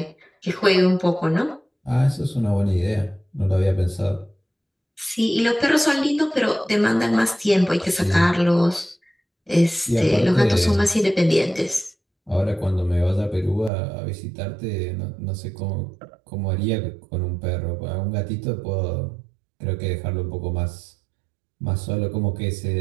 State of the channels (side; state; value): left; drops out; at 13.7 s